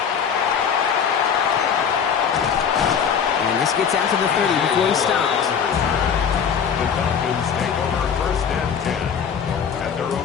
And this gets out to the 30 before he stops. The Falcons take over 1st and 10. At their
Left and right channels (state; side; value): quieter; right; 7.2 dB